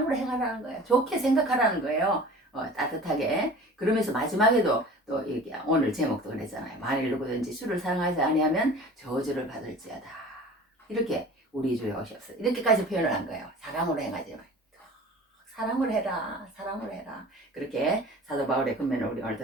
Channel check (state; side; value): normal; both; correlation 0.42